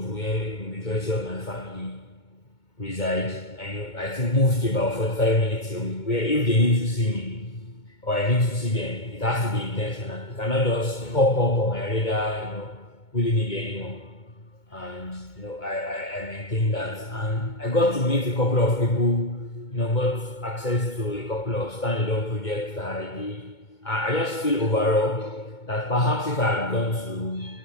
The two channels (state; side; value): late; right; 2.2 ms